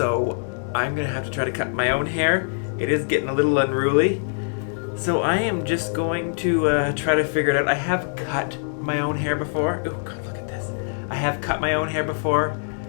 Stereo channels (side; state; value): right; silent; digital silence